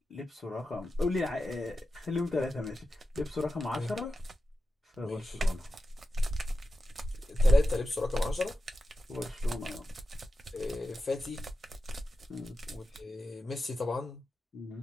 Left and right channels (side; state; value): both; normal; correlation 0.91